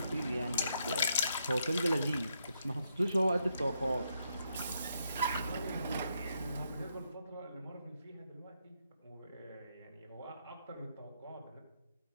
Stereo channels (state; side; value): inverted; both; correlation -0.78